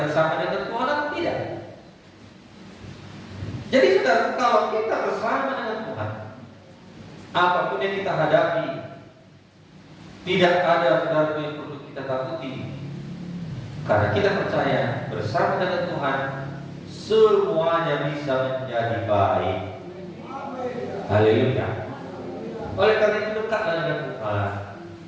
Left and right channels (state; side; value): identical; both; correlation 1.00